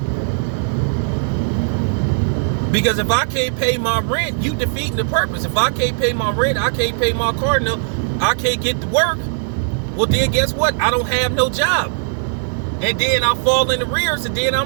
Because if I can't pay my rent, you defeating the purpose. If I can't pay my rent, I can't pay my car note, I can't get to work. Well, then guess what? I don't have no job. And then I fall in the rears, and then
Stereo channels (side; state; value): left; silent; 67 dB below the other